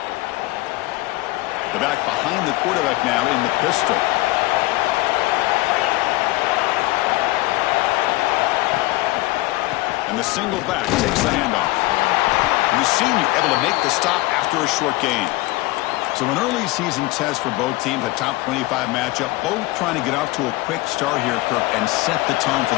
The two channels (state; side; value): quieter; right; 20.0 dB